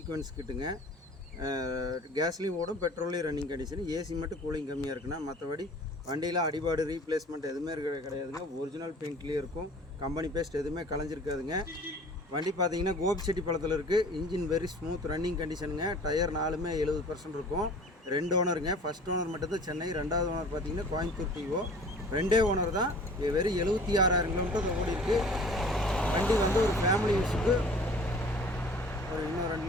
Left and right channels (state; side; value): normal; both; correlation 0.46